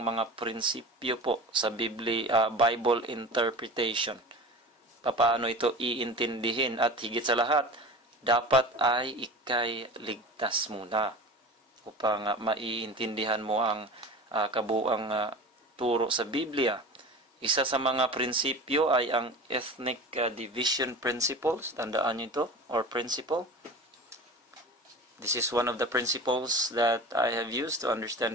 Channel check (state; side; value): normal; both; correlation 0.34